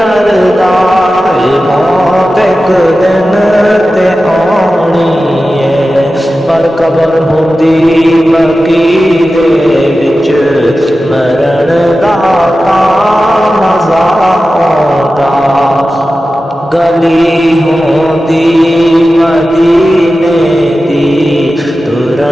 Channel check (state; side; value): normal; both; correlation 0.94